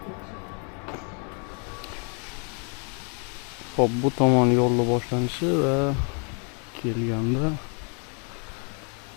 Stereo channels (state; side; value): quieter; right; 38.6 dB